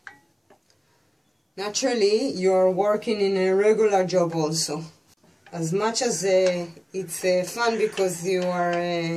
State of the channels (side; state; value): both; identical; correlation 1.00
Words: naturally you're working in a regular job also. As much as it's fun because you